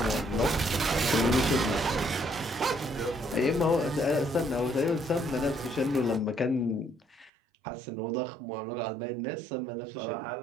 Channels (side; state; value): left; drops out; at 7.3 s